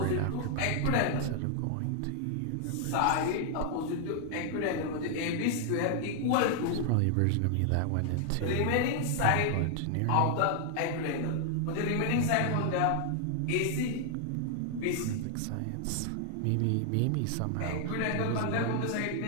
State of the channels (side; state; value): both; different; correlation 0.00